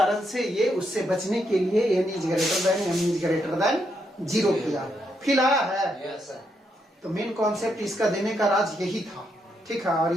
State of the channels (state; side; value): normal; both; correlation 0.79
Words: से ये उससे बचने के लिए n is greater than m is greater than 0 किया, फिर आया है। यस सर, तो मेन कॉन्सेप्ट इसका देने का राज यही था, ठीक है। और